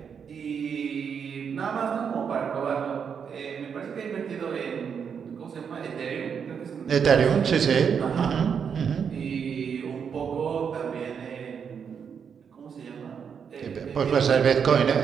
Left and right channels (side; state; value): left; quieter; 7.0 dB